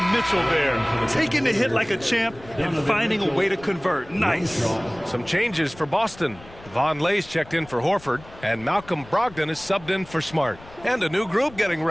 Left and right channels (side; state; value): left; noise; rumble, 21 dB below the sound